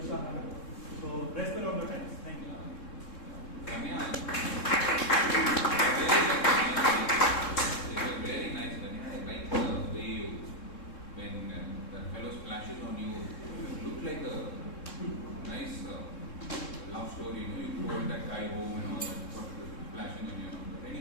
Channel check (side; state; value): right; late; 3.7 ms